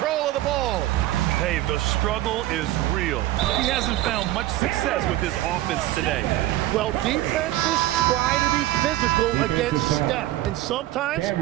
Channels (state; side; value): quieter; left; 15.4 dB